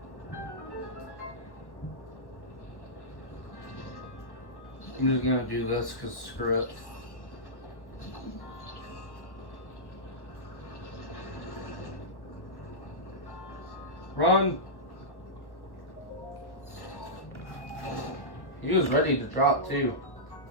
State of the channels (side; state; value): right; late; 1.1 ms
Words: I'm just gonna do this because screw it. Run! He was ready to drop too.